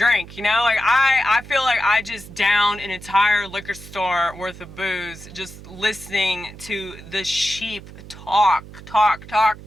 you know? Like, I feel like I just downed an entire liquor store worth of booze just listening to the sheep talk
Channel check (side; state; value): right; noise; hum, 16 dB below the sound